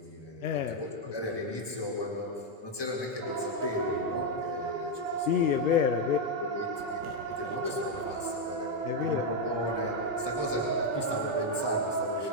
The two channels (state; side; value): late; right; 1.2 ms